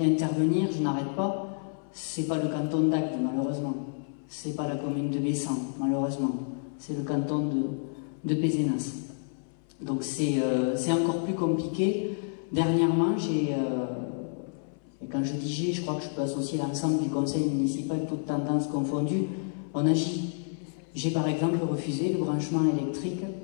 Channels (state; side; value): silent; right; 58 dB below the other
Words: intervenir, je n'arrête pas. C'est pas le canton d'Agde, malheureusement. C'est pas la commune de Bessan, malheureusement. C'est le canton de Pézenas. Donc c'est encore plus compliqué. Dernièrement, et quand je dis je crois que je peux associer l'ensemble du conseil municipal, toutes tendances confondues, on agit. J'ai par exemple refusé le branchement électrique